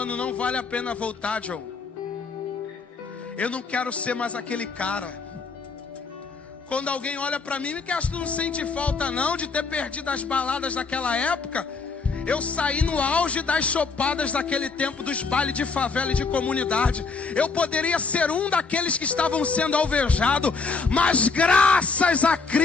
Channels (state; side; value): quieter; right; 4.5 dB